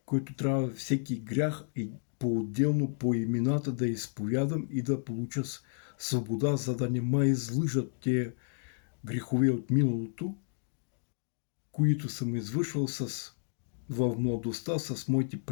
който трябва всеки грях и по-отделно по имената да изповядам и да получа свобода, за да не ме излъжат те грехове от миналото, които съм извършвал в младостта с моите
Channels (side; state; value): right; silent; digital silence